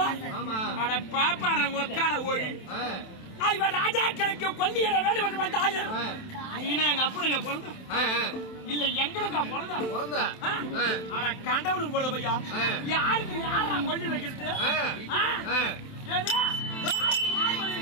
அட பாப்பார ஒக்கால ஓடி இவர் ராஜாக்களுக்கு கொல்லியிட வேண்டும் என்று வந்தாரு. நீனா எங்க அப்பனுங்க பிறந்த இல்ல எங்களுக்கு பிறந்த அட கண்டவனுக்கு பிறந்த பையா யாருக்கு யாரா கொல்லி வைக்கிறது?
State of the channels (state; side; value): late; right; 27 ms